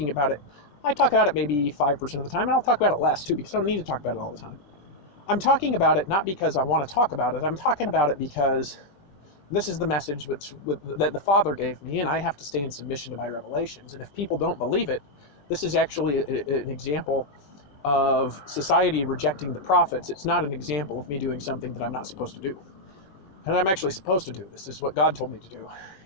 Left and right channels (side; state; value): right; late; 20 ms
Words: about it, I talk about it maybe 5% of the time, and I'll talk about it less too, because I don't need to talk about it all the time. I'm talking about it not because I want to talk about it, I'm talking about it because this is the message that the Father gave me, and I have to stay in submission to my revelations. And if people don't believe it, this is actually an example of society rejecting the prophets. It's not an example of me doing something that I'm not supposed to do. And I'm actually supposed to do this. This is what God told me to do.